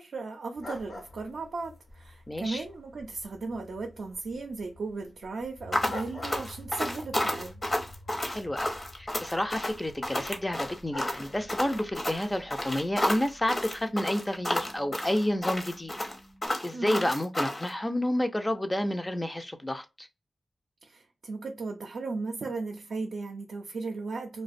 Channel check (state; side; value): normal; both; correlation 0.96